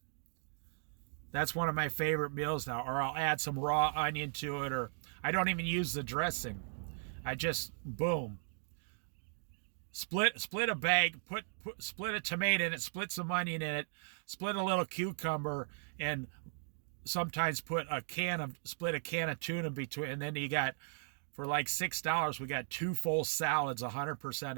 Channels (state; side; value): silent; left; digital silence